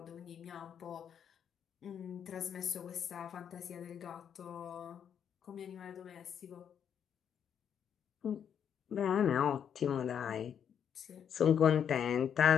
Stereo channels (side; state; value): right; quieter; 8.4 dB